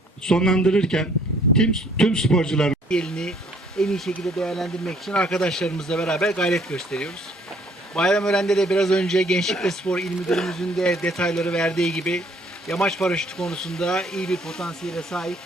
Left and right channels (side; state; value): both; normal; correlation 0.62